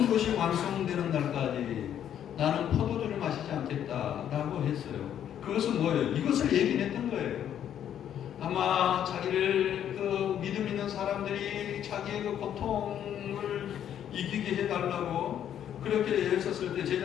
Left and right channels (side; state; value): right; quieter; 9.9 dB